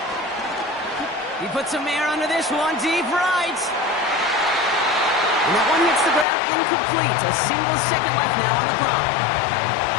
He puts some air under this one, deep right. And that one hits the ground incomplete. A single second left now on the clock.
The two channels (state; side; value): drops out; right; at 6.2 s